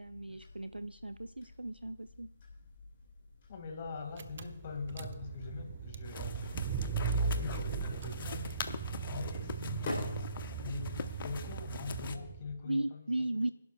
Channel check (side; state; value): both; inverted; correlation -0.64